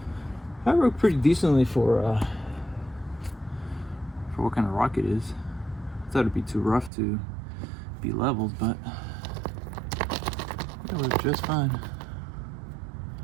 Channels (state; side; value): drops out; left; at 6.9 s